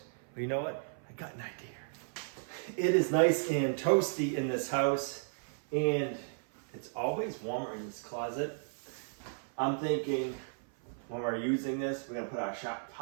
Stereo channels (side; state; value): left; silent; 55 dB below the other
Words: but you know what? I got an idea. It is nice and toasty in this house, and it's always warmer in this closet. I'm thinking when we're using this, we're gonna put our